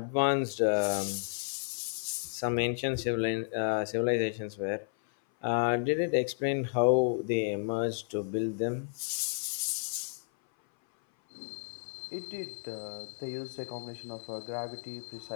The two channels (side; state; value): right; silent; 56 dB below the other